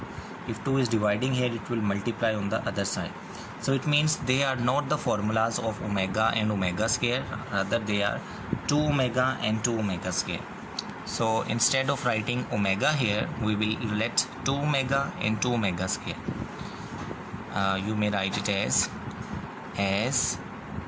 If 2 is dividing here, it will multiply on the other side. So it means they are not the formulas of omega and omega square, rather they are 2 omega and 2 omega square. So instead of writing omega here, we will let 2 omega and 2 omega square. You may write it as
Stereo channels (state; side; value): identical; both; correlation 1.00